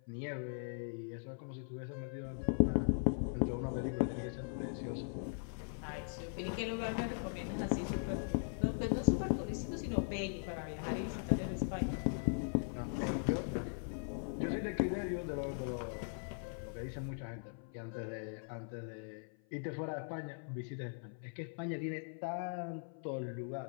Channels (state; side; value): silent; right; 51 dB below the other